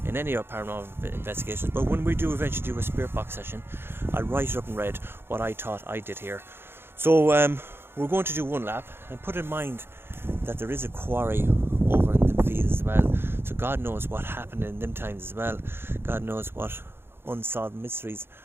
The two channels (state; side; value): late; left; 0.11 ms